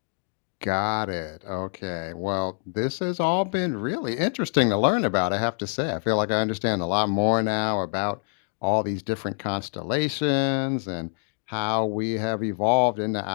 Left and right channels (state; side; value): silent; right; digital silence